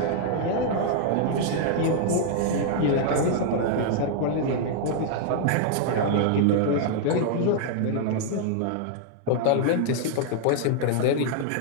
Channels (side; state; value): both; different; correlation -0.01